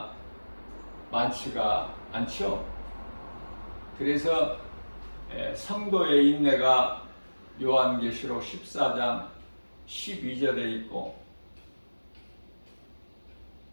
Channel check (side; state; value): both; inverted; correlation -1.00